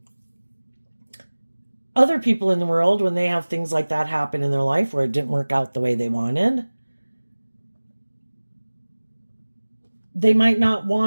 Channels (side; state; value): both; inverted; correlation -1.00